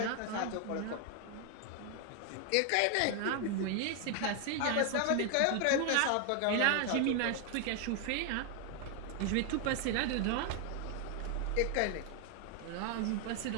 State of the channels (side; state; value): both; different; correlation 0.00